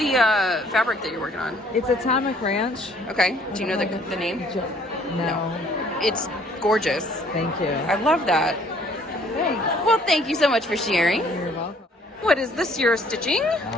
fabric that you're working on? It's Atomic Ranch. Okay. Do you know the name? No. It's gorgeous. Thank you. I love that. Thanks. Well, thank you so much for sharing. You're welcome. What is this you're stitching?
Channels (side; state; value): both; normal; correlation 0.60